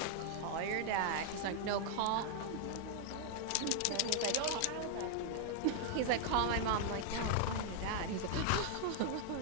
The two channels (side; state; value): both; different; correlation -0.01